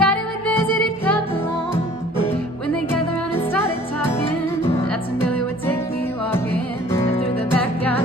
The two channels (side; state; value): both; normal; correlation 0.51